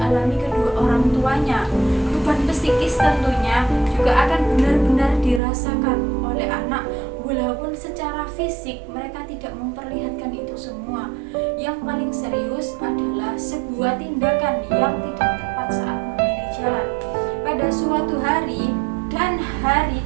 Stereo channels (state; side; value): drops out; left; at 5.4 s